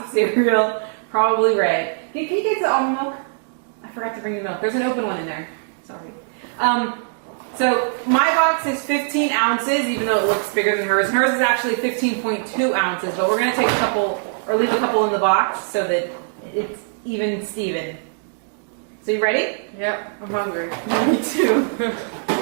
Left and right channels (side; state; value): left; silent; digital silence